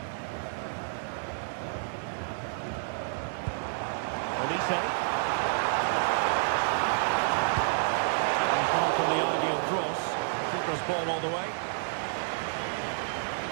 Olise. And far from the ideal cross. Keeper's ball all the way.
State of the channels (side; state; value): left; silent; 58 dB below the other